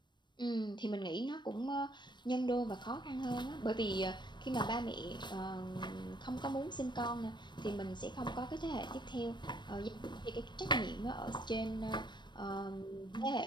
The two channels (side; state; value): right; late; 0.22 ms